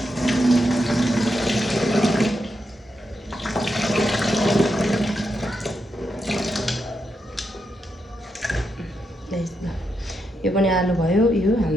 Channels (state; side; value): normal; both; correlation 0.84